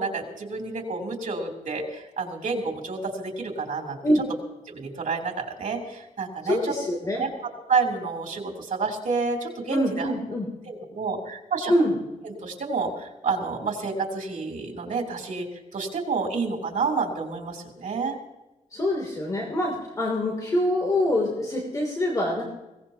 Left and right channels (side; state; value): both; normal; correlation 0.52